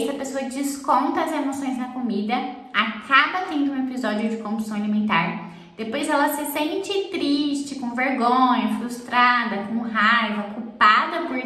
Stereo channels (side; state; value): both; identical; correlation 1.00